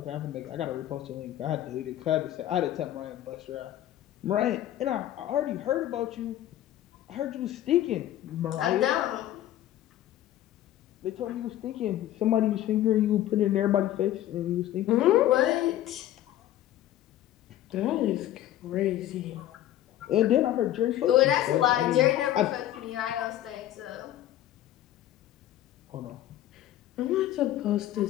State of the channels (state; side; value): quieter; right; 13.0 dB